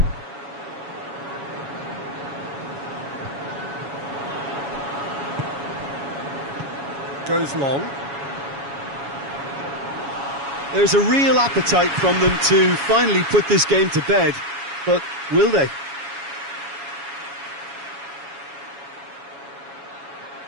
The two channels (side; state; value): left; late; 7.2 ms